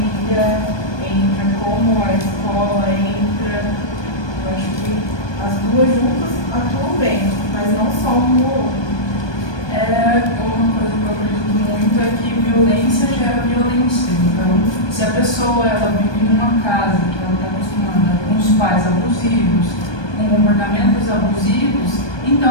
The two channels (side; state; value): right; late; 1.2 ms